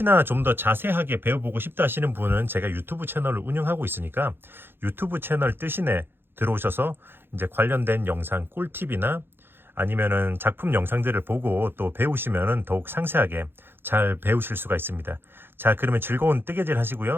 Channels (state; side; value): late; left; 0.10 ms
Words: 좀 더 자세하게 배워보고 싶다 하시는 분은 제가 유튜브 채널을 운영하고 있으니까 유튜브 채널 뜨신에 들어오셔서 이제 관련된 영상 꿀팁이나 아니면은 작품 영상들을 보고 또 배우시면은 더욱 상세하게 잘 배우실 수가 있습니다. 자, 그러면 즐거운 뜨개질